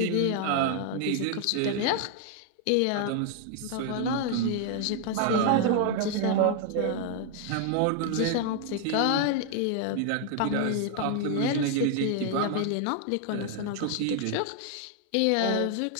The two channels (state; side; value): different; both; correlation 0.00